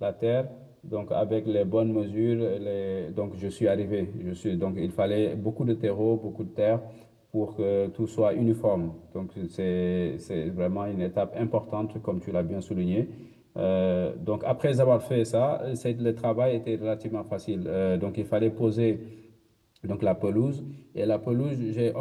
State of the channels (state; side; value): identical; both; correlation 1.00